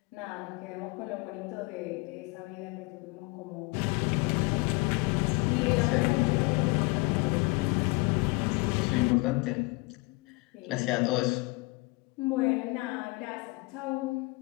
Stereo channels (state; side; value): quieter; right; 26.1 dB